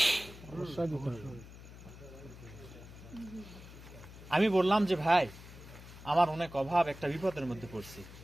আমি বললাম যে ভাই, আমার অনেক অভাব, একটা বিপদের মধ্যে পড়ছি,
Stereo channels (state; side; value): noise; left; hum, 16 dB below the sound